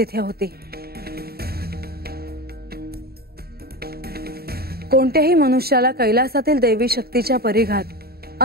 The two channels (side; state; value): left; late; 0.45 ms